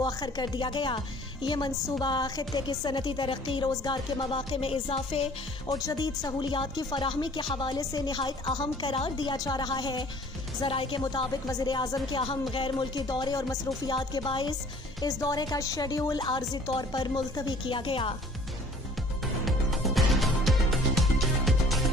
कर दिया गया। ये मंसूबा खित्ते की सनती तरक्की, रोज़गार के मौक़े में इजाफे और जदीद सहूलियात की फराहमी के हवाले से निहायत अहम करार दिया जा रहा है। ज़राए के मुताबिक वज़ीर आज़म के अहम गैर मुल्की दौरे और मसरूफियात के बाइस इस दौरे का शेड्यूल आर्जी तौर पर मुलतवी किया गया।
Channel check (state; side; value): normal; both; correlation 0.52